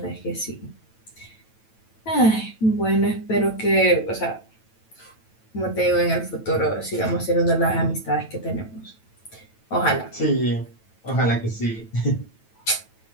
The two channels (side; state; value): right; late; 9.1 ms